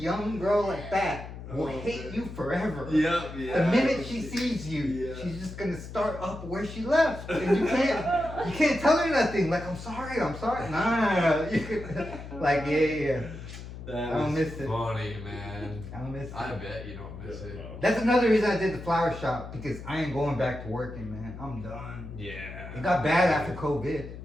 girl like that will Oh, hate man. you forever. Yeah, yeah. The minute she sees you, Yeah. she's just gonna start up where she left, and you can't tell her nothing. Like, I'm sorry. Nah. You could, like, yeah. That I don't was miss it. funny, man. I don't miss it. I bet you don't miss it. That's another reason I did the flower shop, because I ain't going back to working, man. I'm done. Yeah. It got bad after COVID.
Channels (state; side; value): noise; left; hum, 11 dB below the sound